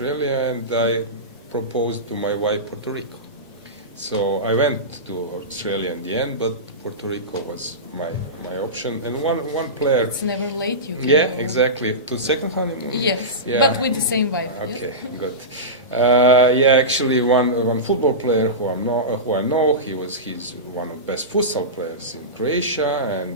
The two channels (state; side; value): normal; both; correlation -0.18